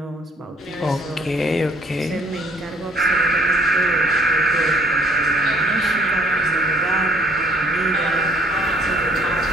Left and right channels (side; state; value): both; normal; correlation 0.60